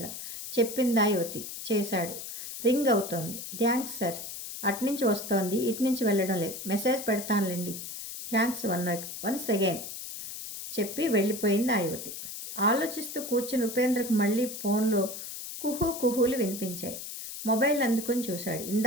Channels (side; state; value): left; noise; hiss, 9 dB below the sound